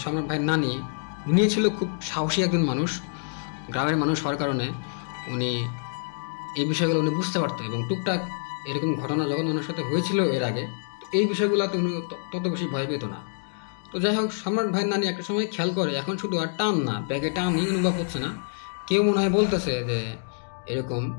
সম্রাট ভাইয়ের নানি, উনি ছিল খুব সাহসী একজন মানুষ, গ্রামের মানুষ হওয়ার কারণে উনি এই বিষয়গুলো উনি বুঝতে পারতেন। এবং টুকটাক এরকম ঘটনা যখন ওনার সাথে হয়েছিল এর আগে, এই বিষয়গুলোতে উনি তত বেশি ভয় পেত না। তো যাই হোক, সম্রাট ভাইয়ের নানি একটা সময় খেয়াল করে এখন শুধু আর টান না, ব্যাগে টানই অনুভব হচ্ছে না, কেউ মনে হয় বলতেছে যে এরকম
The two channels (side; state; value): right; silent; digital silence